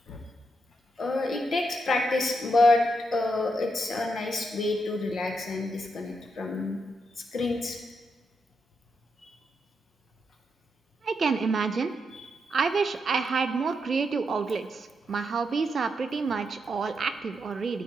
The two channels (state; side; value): normal; both; correlation 0.82